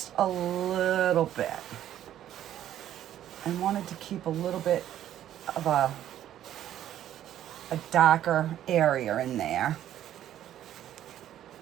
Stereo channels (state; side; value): quieter; left; 11.6 dB